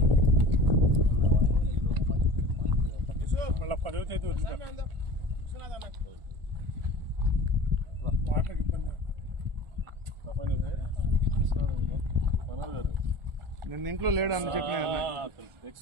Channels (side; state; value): left; late; 1.4 ms